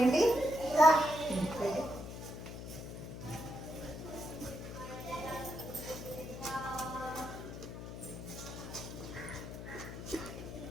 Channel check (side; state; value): left; noise; hum, 9 dB below the sound